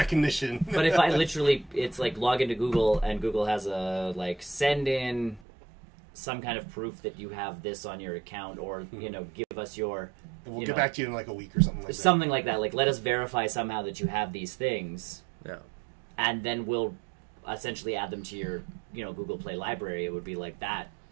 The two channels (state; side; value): drops out; left; at 5.4 s